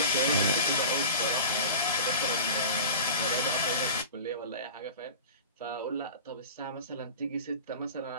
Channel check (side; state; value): both; inverted; correlation -0.35